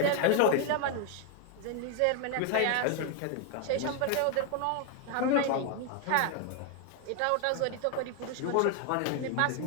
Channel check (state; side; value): different; both; correlation 0.01